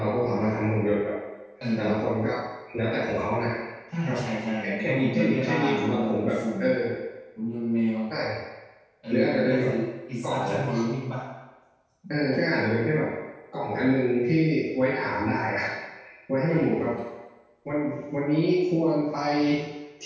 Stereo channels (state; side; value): identical; both; correlation 1.00